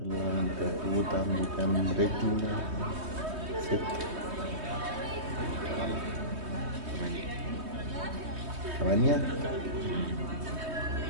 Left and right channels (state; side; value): late; left; 3.2 ms